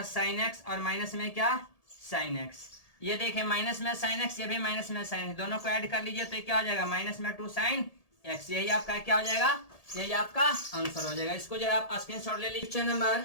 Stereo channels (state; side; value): late; right; 1.7 ms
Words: साइन एक्स और माइनस में क्या साइन एक्स, ये देखिए माइनस में साइन एक्स, ये भी माइनस में साइन, दोनों को ऐड कर लीजिए तो ये क्या हो जाएगा माइनस में 2 साइन एक्स, यही आपका क्या हो जाएगा, यही आपका आंसर हो जाएगा। इसको जरा आप स्क्रीनशॉट ले लीजिए। नंबर